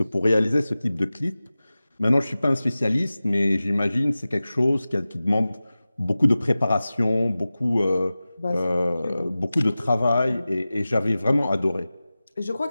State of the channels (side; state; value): both; inverted; correlation -0.96